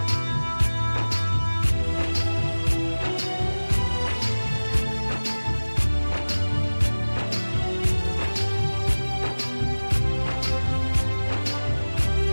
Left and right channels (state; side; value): inverted; both; correlation -1.00